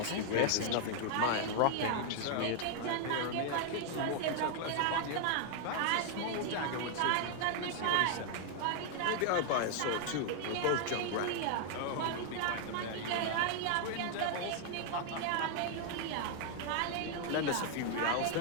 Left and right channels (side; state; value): both; different; correlation 0.00